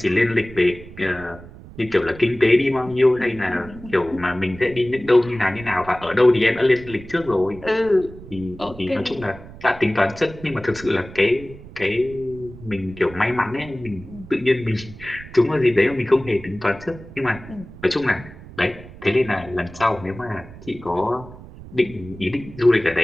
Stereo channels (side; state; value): right; noise; rumble, 17 dB below the sound